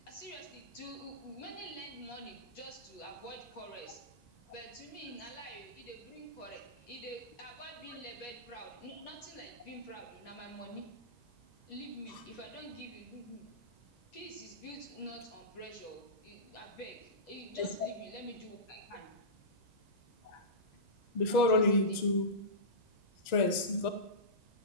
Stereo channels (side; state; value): right; late; 1.9 ms